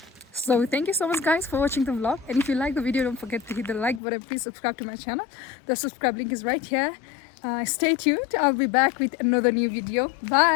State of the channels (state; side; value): drops out; right; at 4.0 s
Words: So thank you so much guys for watching the vlog, and if you like the video, don't forget to hit the like button. Please subscribe to my channel. The subscribe link is right here. Stay tuned. I'll be back with another new video.